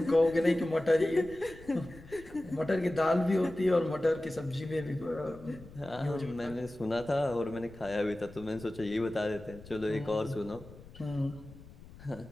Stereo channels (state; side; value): noise; left; rumble, 19 dB below the sound